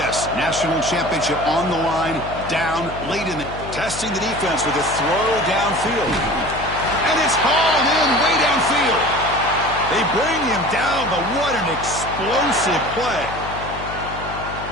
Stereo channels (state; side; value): noise; left; hum, 11 dB below the sound